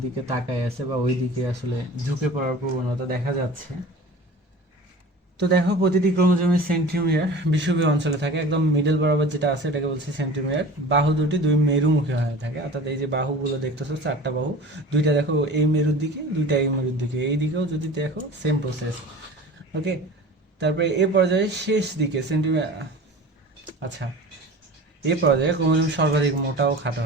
দিকে তাকায় আছে বা ওই দিকে আসলে ঝুঁকে পড়ার প্রবণতা দেখা যাচ্ছে। তো দেখো প্রতিটি ক্রোমোজোমের সেন্টিমিটার বিষুবীয় অঞ্চলে থাকে, একদম মিডল বরাবর যেটা আছে এটাকে বলছে সেন্টিমিটার। বাহু দুটি দুই মেরুমুখী হয়ে থাকে, অর্থাৎ এই যে বাহুগুলো দেখতেছো 4টা বাহু, দুইটা দেখো এই মেরুর দিকে, দুইটা এই মেরুর দিকে, এই দিকেও যদি দেখো সেম প্রসেস। ওকে, তারপরে এ পর্যায়ে শেষ দিকে সেন্টিমিটার, আচ্ছা এ পর্যায়ে ক্রোমোজোম সর্বাধিক মোটা ও খাটো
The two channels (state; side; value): normal; both; correlation 0.39